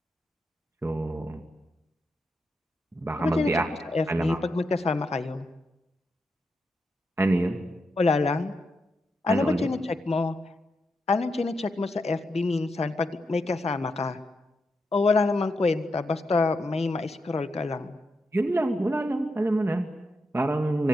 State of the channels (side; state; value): both; normal; correlation 0.85